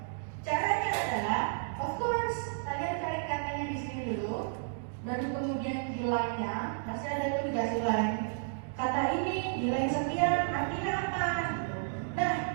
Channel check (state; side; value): silent; left; digital silence